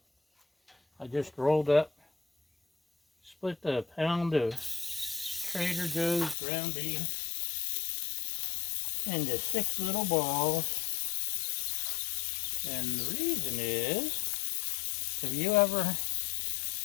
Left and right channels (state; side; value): drops out; right; at 6.4 s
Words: I just rolled up, split a pound of Trader Joe's ground beef into 6 little balls. And the reason is, have you ever